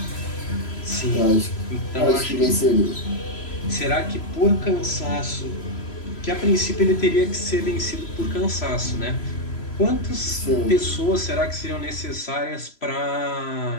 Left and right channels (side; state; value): right; late; 3.0 ms